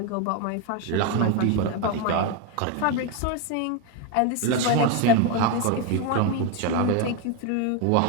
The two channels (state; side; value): different; both; correlation 0.02